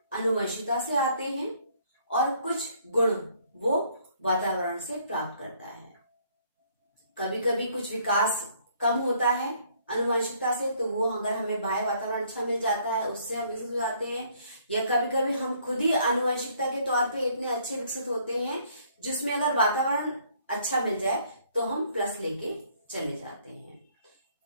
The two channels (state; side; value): inverted; both; correlation -0.63